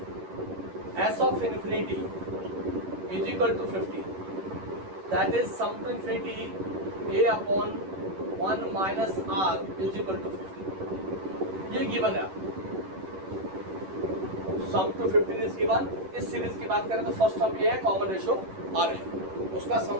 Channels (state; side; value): late; left; 11 ms